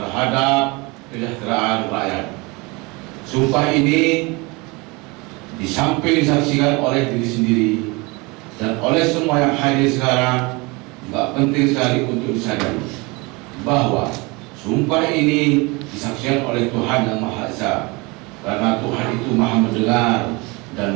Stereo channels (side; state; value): left; quieter; 26.2 dB